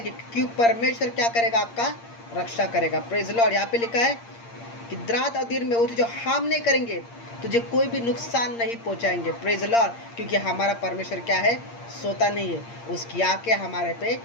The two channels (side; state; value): right; late; 8.6 ms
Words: क्योंकि परमेश्वर क्या करेगा, आपका रक्षा करेगा। Praise Lord. यहाँ पे लिखा है कि रात और दिन में वो तुझे हार्म नहीं करेंगे, तुझे कोई भी नुकसान नहीं पहुँचाएंगे। Praise Lord. क्योंकि हमारा परमेश्वर क्या है, सोता नहीं है, उसकी आँखें हमारे पे